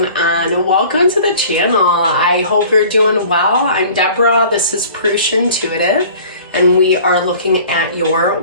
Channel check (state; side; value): inverted; both; correlation -0.47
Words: on? Welcome to the channel. I hope you're doing well. I'm Deborah, this is Purusha Intuitive, and we are looking at your